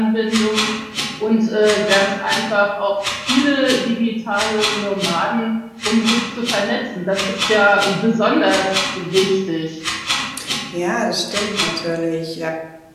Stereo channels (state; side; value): identical; both; correlation 1.00